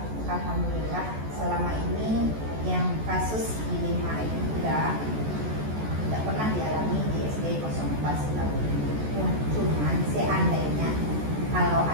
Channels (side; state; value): left; late; 14 ms